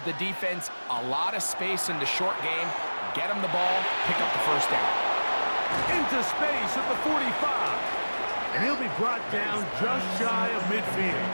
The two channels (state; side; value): inverted; both; correlation -1.00